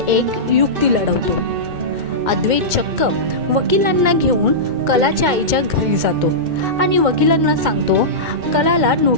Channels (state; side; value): late; left; 2.2 ms